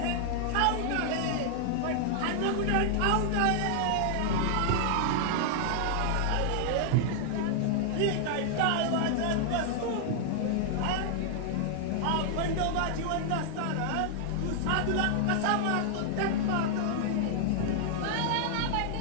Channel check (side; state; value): both; different; correlation -0.01